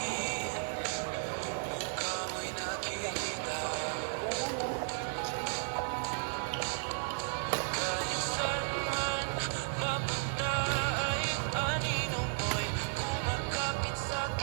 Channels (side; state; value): left; silent; 55 dB below the other